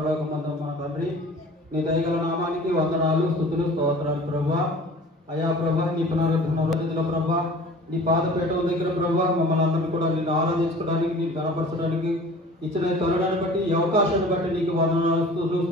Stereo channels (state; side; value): normal; both; correlation 0.45